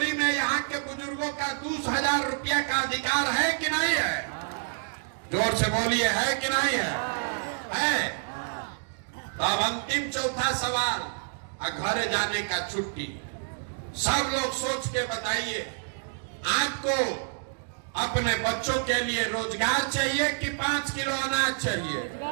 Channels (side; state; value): left; silent; digital silence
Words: में यहाँ के बुजुर्गों का 2000 रुपया का अधिकार है कि नहीं है। जोर से बोलिए, है कि नहीं है? तो अब अंतिम चौथा सवाल, घर जाने का छुट्टी। सब लोग सोच के बताइए, आपको अपने बच्चों के लिए रोजगार चाहिए कि 5 किलो अनाज चाहिए?